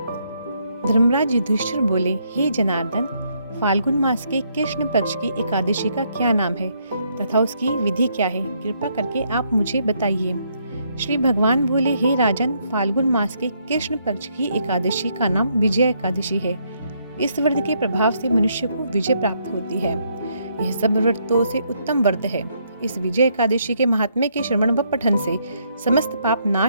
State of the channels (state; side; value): inverted; both; correlation -0.73